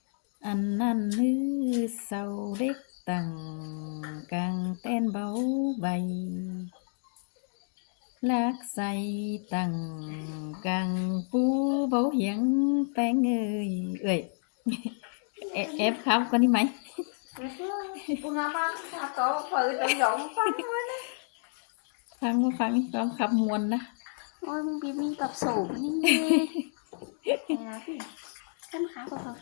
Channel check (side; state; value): right; silent; digital silence